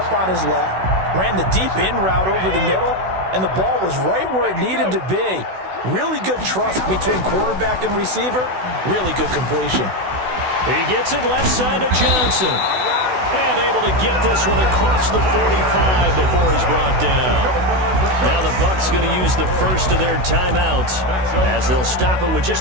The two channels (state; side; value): late; left; 16 ms